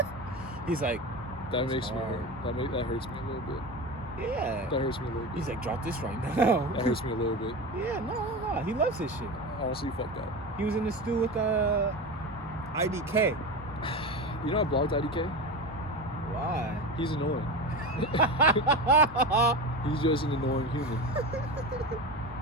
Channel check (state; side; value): normal; both; correlation 0.25